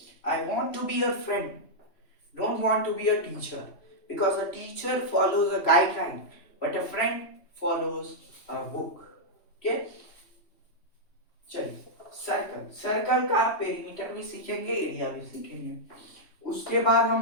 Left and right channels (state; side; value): late; right; 3.1 ms